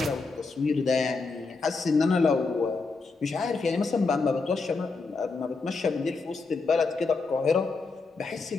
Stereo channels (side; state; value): right; quieter; 4.1 dB